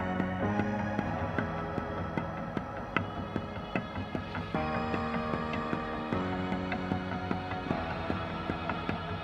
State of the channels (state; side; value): identical; both; correlation 1.00